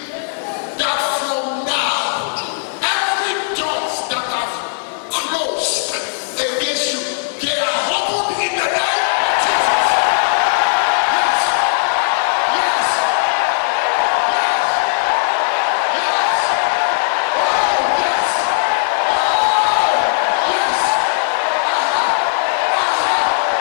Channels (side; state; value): right; silent; digital silence